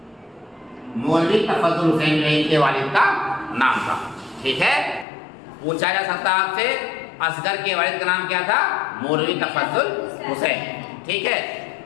حسین جو ان کے والد کا نام تھا، ٹھیک ہے۔ پوچھا جا سکتا آپ سے اصغر کے والد کا نام کیا تھا؟ مولوی تفضل حسین، ٹھیک ہے،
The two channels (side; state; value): right; drops out; at 5.1 s